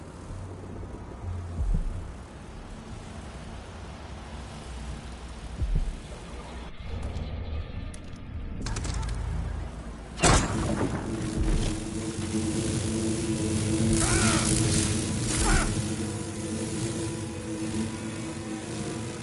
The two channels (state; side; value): identical; both; correlation 1.00